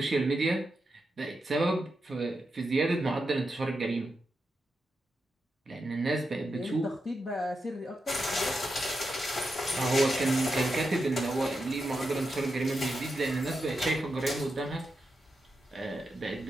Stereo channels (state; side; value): normal; both; correlation 0.87